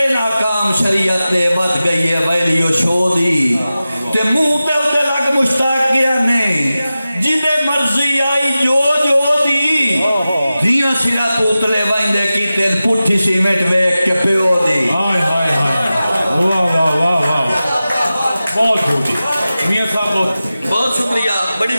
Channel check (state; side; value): inverted; both; correlation -0.95